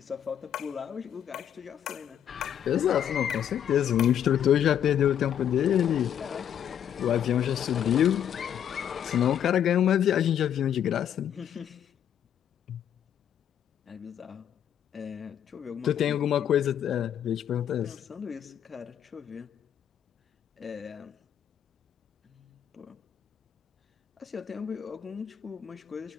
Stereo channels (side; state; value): right; quieter; 9.5 dB